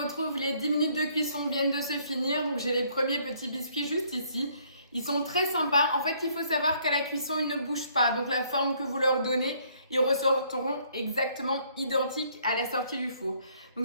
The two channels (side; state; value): both; inverted; correlation -0.65